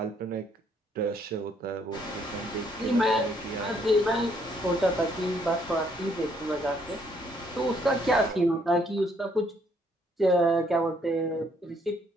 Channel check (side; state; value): both; normal; correlation 0.68